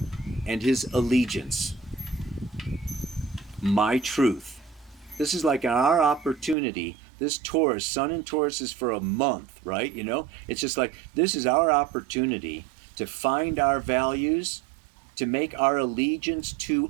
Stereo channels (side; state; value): left; drops out; at 6.6 s